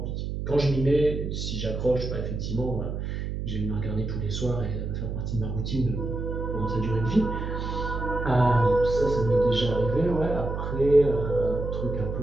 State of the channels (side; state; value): right; noise; hum, 4 dB below the sound